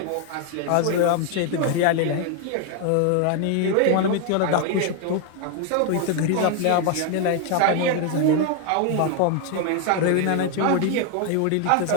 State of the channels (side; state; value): both; different; correlation 0.00